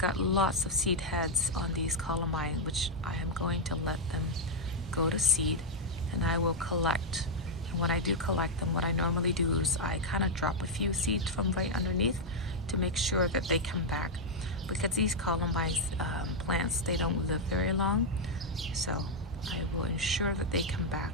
lots of seed heads on these columbines, which I am going to let them go to seed, and I will collect. And when I do collect them, what I normally do is I kind of drop a few seeds from right underneath to make sure that they come back, because these columbine plants, they don't live very long, so I will ensure that they come back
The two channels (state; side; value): normal; both; correlation -0.02